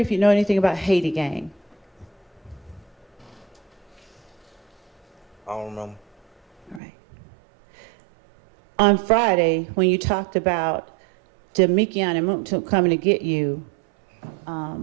if you know anything about Haiti Gang? I don't remember. All right. On Friday, when you talked about Demikion and Moontum coming to get you,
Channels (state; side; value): drops out; left; at 6.8 s